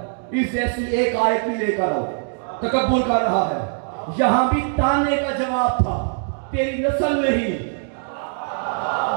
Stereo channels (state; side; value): silent; left; digital silence